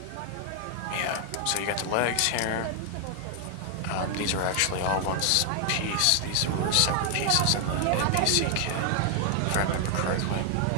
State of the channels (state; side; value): different; both; correlation 0.00